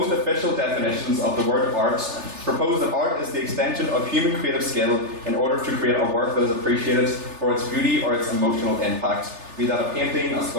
official definitions of the word art, propose that art is the extension of human creative skill in order to create a work that is appreciated for its beauty or its emotional impact, be that a painting, a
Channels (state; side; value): late; left; 3.4 ms